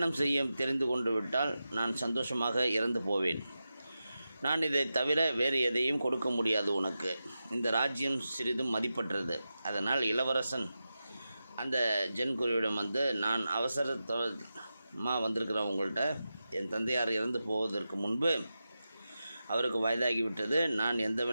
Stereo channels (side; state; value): both; inverted; correlation -0.91